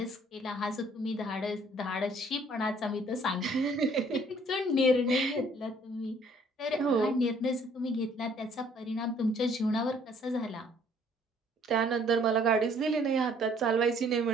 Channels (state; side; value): normal; both; correlation 0.60